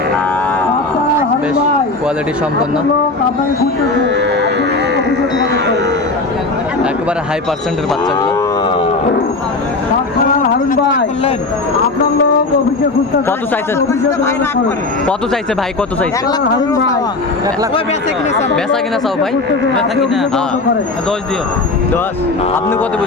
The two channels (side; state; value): right; quieter; 3.4 dB